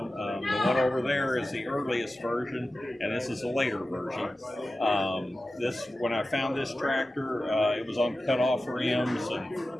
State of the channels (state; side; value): normal; both; correlation 0.94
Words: The one over there is the earliest version, and this is a later version. When I found this tractor, it was on cut-off rims